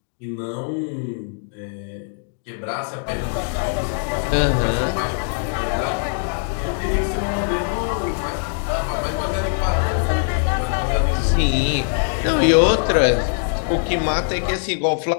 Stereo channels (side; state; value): right; silent; digital silence